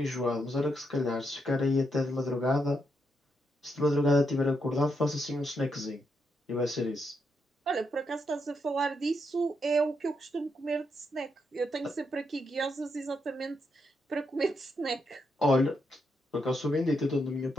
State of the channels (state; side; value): normal; both; correlation 0.80